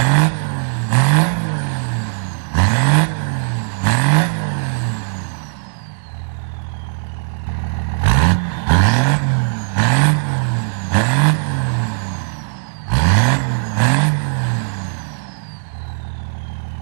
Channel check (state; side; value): silent; left; digital silence